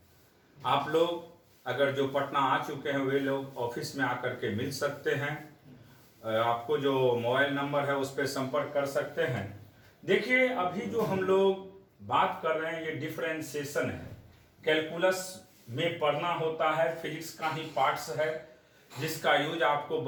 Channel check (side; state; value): both; identical; correlation 1.00